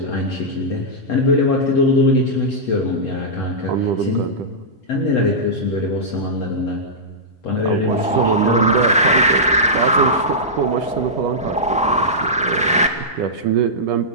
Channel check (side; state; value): both; normal; correlation -0.13